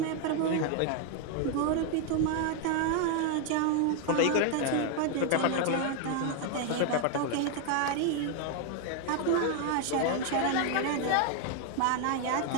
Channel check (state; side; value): different; both; correlation 0.01